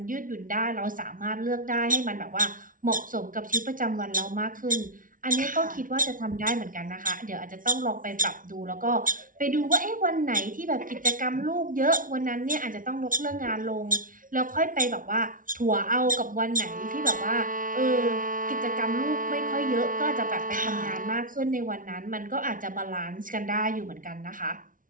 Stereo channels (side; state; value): left; late; 0.39 ms